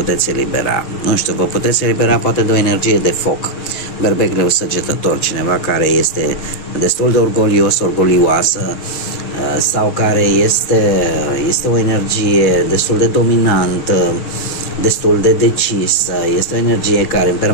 elibera? Nu știu, vă puteți elibera poate de o energie de foc. Berbegleu săgetător, cineva care este destul de orgolios, orgolioasă, sau care este o energie destul de dominantă, destul de decisă, este o energie care în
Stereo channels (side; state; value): right; late; 6.5 ms